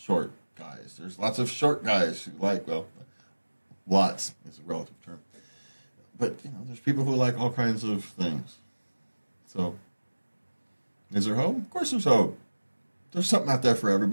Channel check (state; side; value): inverted; both; correlation -1.00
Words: guys. There's lots of short guys who like, lots is a relative term. But, there's people who like all kinds of things. So, is there hope? Of course there's hope. There's something out there for